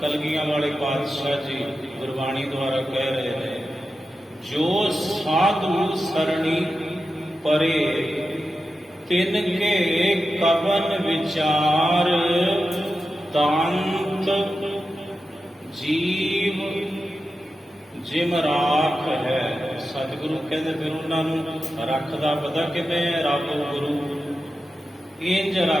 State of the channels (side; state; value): both; normal; correlation 0.91